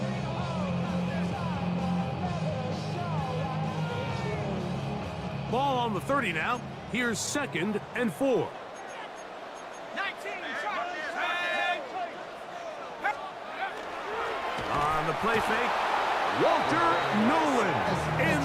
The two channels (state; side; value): identical; both; correlation 1.00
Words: Ball on the 30 now. Here's 2nd and 4. 19. On the play fake, Walter Nolan